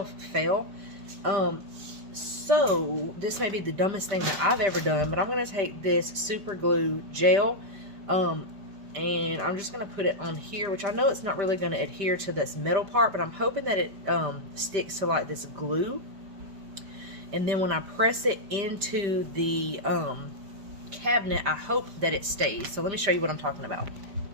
fell. So this may be the dumbest thing that I've ever done, but I'm going to take this super glue gel, and I'm just going to put it on here, which I know it's not really going to adhere to this metal part, but I'm hoping that it sticks to like this glue. And then when I press it into the cabinet, I hope that it stays. So let me show you what I'm talking about.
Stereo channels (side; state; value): left; late; 5.0 ms